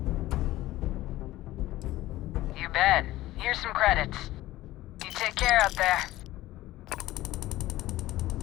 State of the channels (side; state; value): right; quieter; 16.3 dB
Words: You bet. Here's some credits. You take care out there.